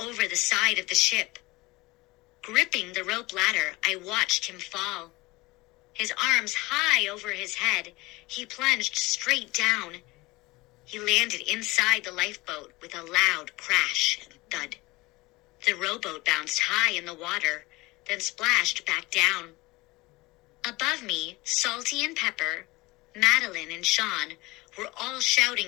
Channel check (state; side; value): quieter; right; 21.7 dB